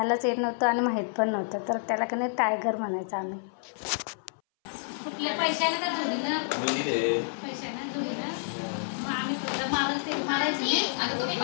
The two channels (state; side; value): silent; right; 59 dB below the other